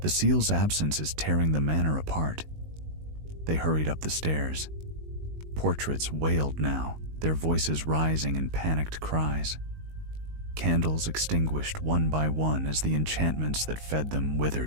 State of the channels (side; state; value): left; late; 19 ms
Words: seal's absence is tearing the manor apart." They hurried up the stairs. Portraits wailed now, their voices rising in panicked cries. Candles extinguished one by one as the enchantments that fed them